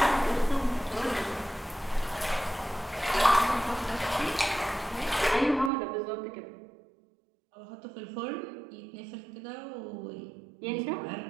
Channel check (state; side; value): drops out; left; at 5.7 s